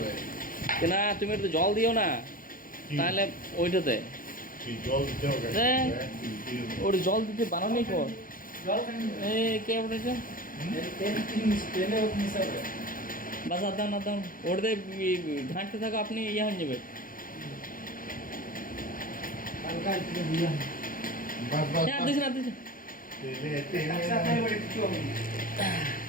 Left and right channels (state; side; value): late; right; 0.40 ms